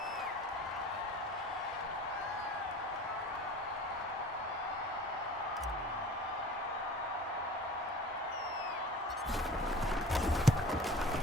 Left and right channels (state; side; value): normal; both; correlation 0.41